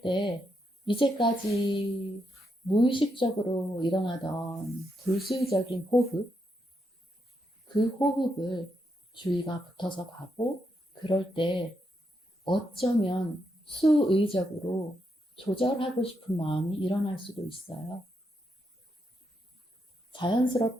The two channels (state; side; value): normal; both; correlation 0.81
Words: 때 이제까지 무의식적으로 일어나던 불수의적인 호흡, 그 호흡을 주의가 붙어서 가고 그럴 때 어쩌면 수의적으로 조절하고 싶은 마음이 일어날 수도 있어요.